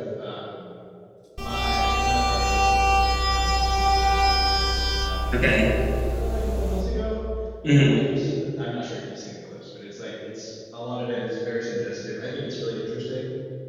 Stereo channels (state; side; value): identical; both; correlation 1.00